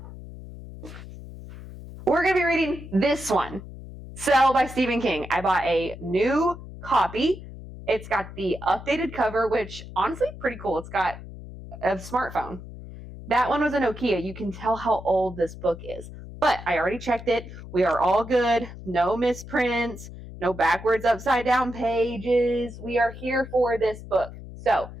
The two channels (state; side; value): noise; left; hum, 13 dB below the sound